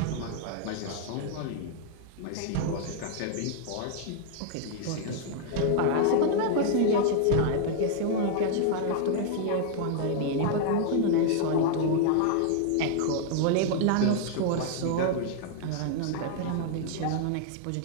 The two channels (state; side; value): different; both; correlation -0.01